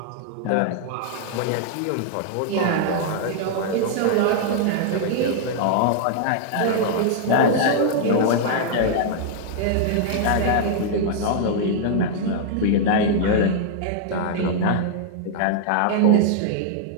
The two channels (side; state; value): both; different; correlation -0.01